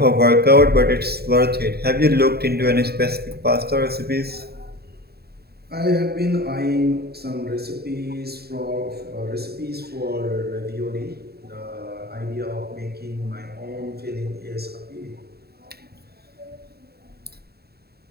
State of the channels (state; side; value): late; left; 0.46 ms